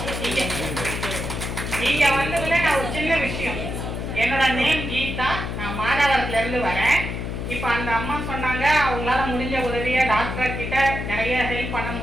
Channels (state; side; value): noise; left; hum, 4 dB below the sound